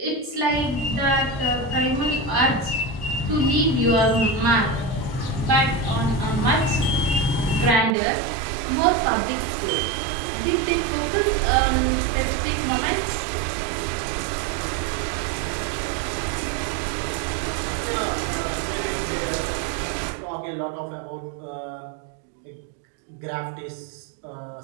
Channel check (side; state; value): left; drops out; at 8.0 s